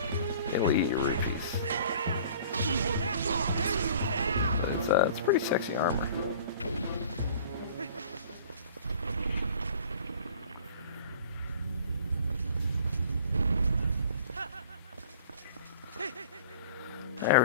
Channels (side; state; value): both; inverted; correlation -0.48